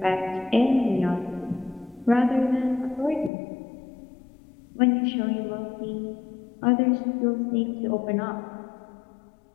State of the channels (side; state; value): right; drops out; at 3.3 s